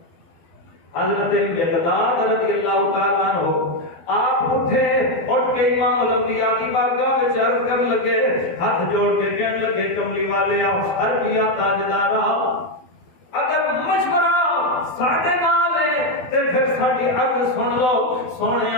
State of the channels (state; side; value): late; right; 12 ms